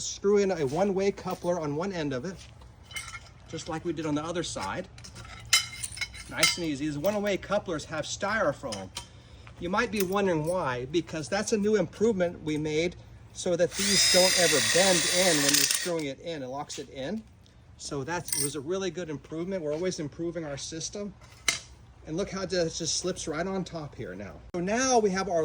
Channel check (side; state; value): both; identical; correlation 1.00